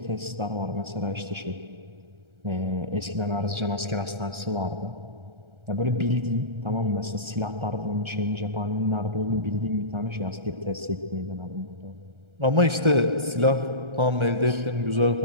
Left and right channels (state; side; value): late; left; 1.3 ms